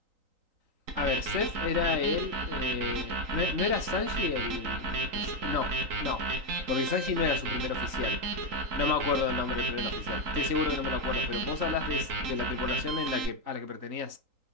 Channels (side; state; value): left; late; 3.9 ms